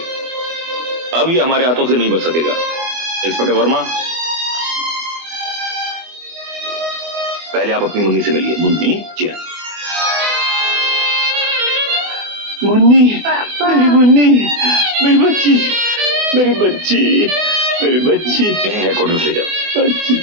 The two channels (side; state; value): left; late; 24 ms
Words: अब ये हमारे हाथों से नहीं बच सकेगा। इंस्पेक्टर वर्मा, पहले आप अपनी मुन्नी से मिलिए। मुन्नी? जी हाँ। मुन्नी, मेरी मुन्नी, मेरी बच्ची, मेरी बच्ची, मेरी बच्ची। इन्हें हेडक्वार्टर ले जाओ। बच्ची,